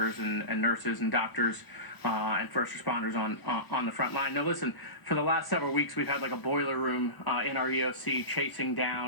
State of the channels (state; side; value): late; right; 1.0 ms